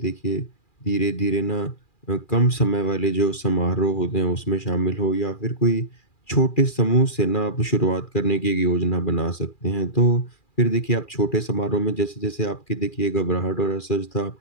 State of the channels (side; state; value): right; late; 2.4 ms